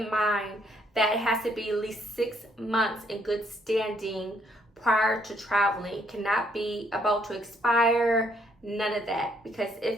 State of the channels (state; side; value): normal; both; correlation 0.69